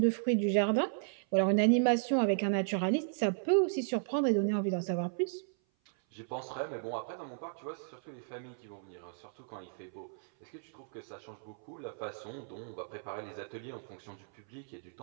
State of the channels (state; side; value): silent; left; 55 dB below the other